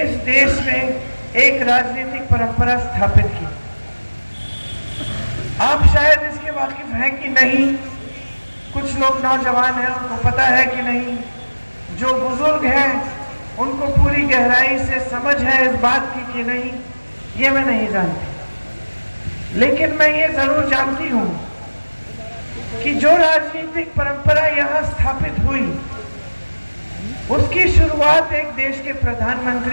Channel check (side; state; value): both; inverted; correlation -1.00